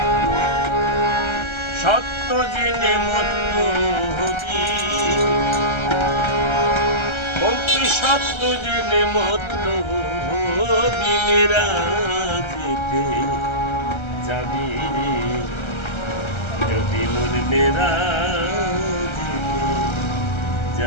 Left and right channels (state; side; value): late; right; 1.3 ms